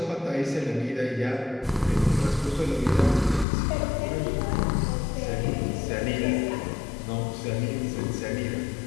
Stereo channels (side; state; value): right; drops out; at 3.5 s